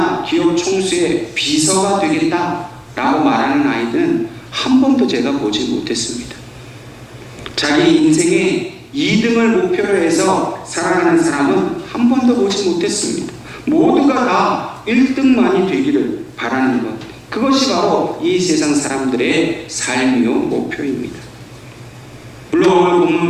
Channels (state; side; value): identical; both; correlation 1.00